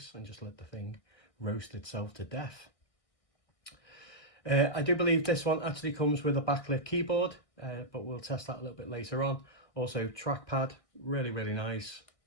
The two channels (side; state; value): right; late; 1.6 ms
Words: and just let the thing roast itself to death. I do believe this one actually comes with a backlit keyboard, but we'll test that a little bit later on. Also trackpad, really nice